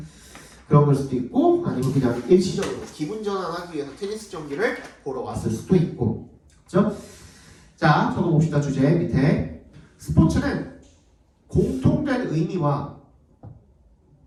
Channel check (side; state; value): both; identical; correlation 1.00